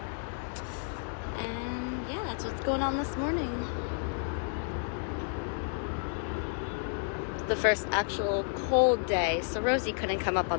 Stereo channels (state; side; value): silent; right; 57 dB below the other